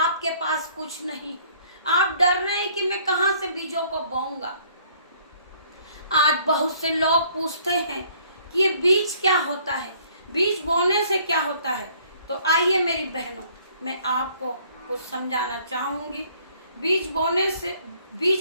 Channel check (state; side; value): inverted; both; correlation -0.60